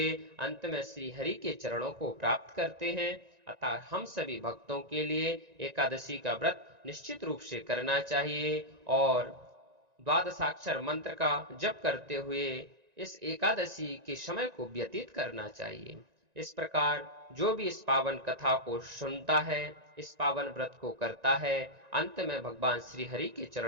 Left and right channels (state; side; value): late; left; 1.9 ms